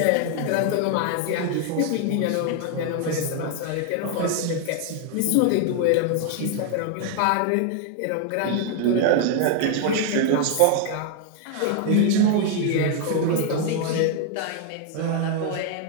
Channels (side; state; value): both; different; correlation 0.00